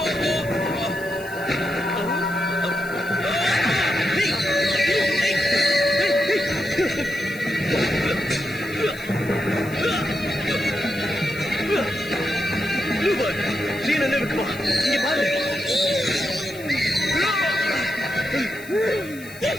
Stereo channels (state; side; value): noise; left; hiss, 18 dB below the sound